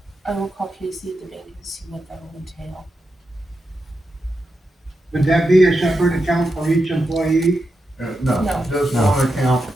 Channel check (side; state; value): both; normal; correlation 0.87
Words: I will call Casey at the bank and see what that will entail. would that be a separate account for each employee? No, No. just No. one account